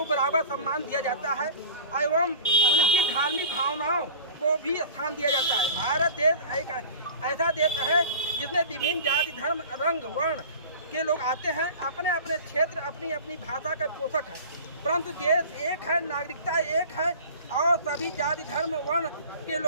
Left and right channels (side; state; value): both; inverted; correlation -0.39